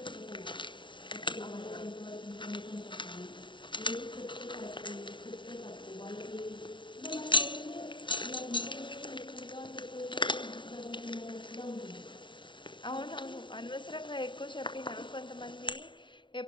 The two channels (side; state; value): right; late; 0.23 ms